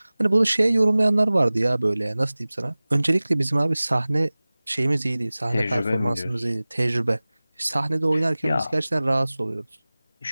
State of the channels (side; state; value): both; inverted; correlation -0.99